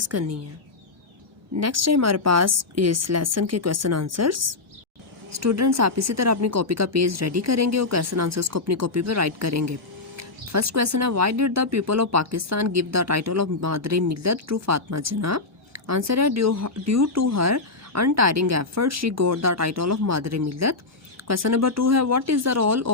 करनी है। नेक्स्ट है हमारे पास इस लेसन के क्वेश्चन आंसर्स। स्टूडेंट्स आप इसी तरह अपनी कॉपी का पेज रेडी करेंगे और क्वेश्चन आंसर्स को अपनी कॉपी पर राइट करेंगे। फर्स्ट क्वेश्चन है, why did the people of Pakistan give the title of मादरे मिल्लत टू फातिमा जिन्ना? आंसर है, due to her untiring effort she got the title of मादरे मिल्लत। क्वेश्चन नंबर 2 है, what is the role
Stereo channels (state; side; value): quieter; right; 3.5 dB